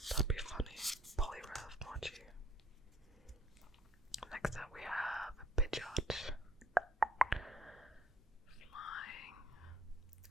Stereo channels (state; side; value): normal; both; correlation 0.59